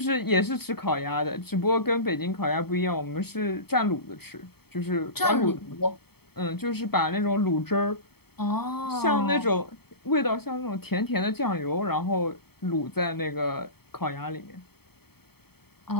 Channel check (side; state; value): right; late; 0.96 ms